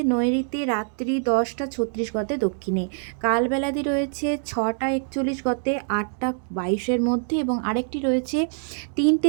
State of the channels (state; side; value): silent; left; digital silence